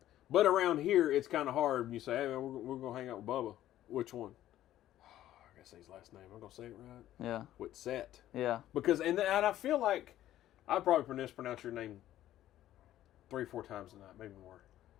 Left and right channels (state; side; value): quieter; right; 13.1 dB